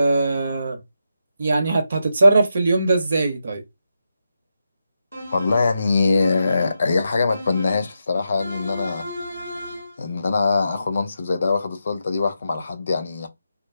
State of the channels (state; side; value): inverted; both; correlation -0.86